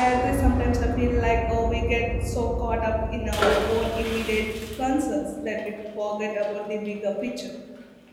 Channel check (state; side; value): identical; both; correlation 1.00